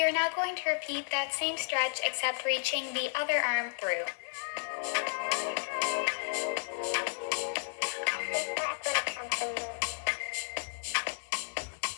are now going to repeat that same stretch except reaching the other arm through.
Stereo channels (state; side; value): silent; right; digital silence